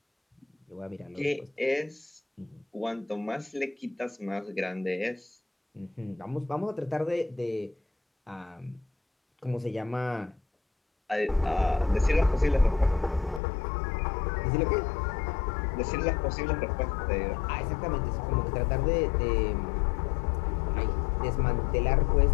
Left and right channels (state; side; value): drops out; right; at 13.4 s